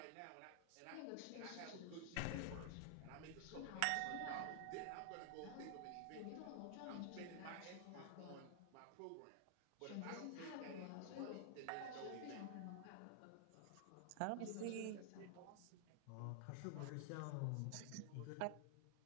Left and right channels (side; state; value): both; different; correlation -0.01